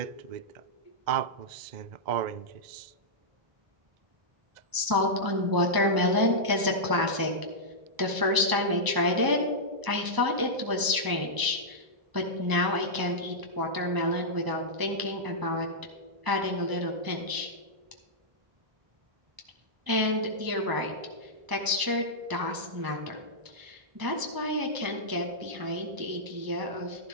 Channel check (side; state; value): left; late; 1.0 ms